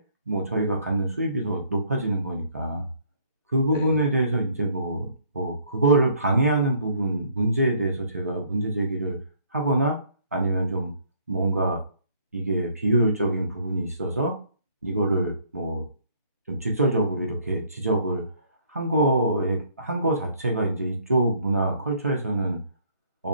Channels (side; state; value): both; inverted; correlation -0.63